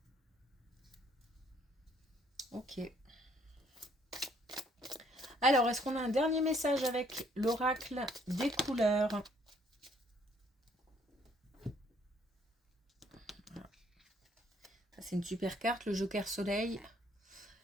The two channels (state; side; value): normal; both; correlation 0.65